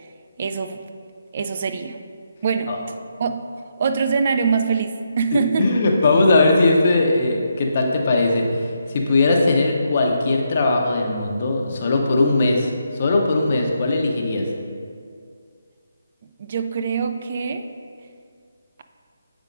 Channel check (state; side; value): inverted; both; correlation -0.79